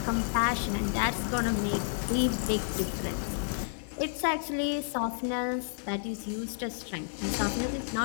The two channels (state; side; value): silent; right; 57 dB below the other